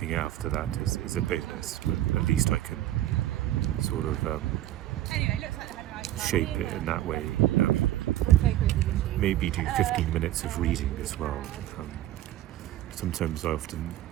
after that is a bonus, but at least I can sort of shape it in that way. Maybe do 15 minutes of reading as well. Sometimes I often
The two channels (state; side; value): quieter; left; 14.0 dB